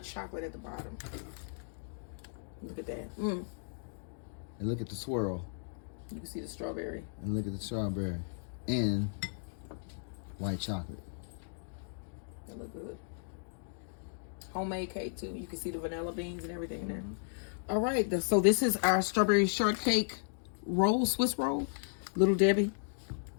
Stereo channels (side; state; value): right; silent; digital silence